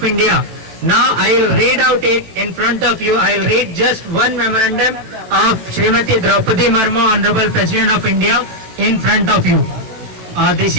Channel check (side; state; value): left; late; 18 ms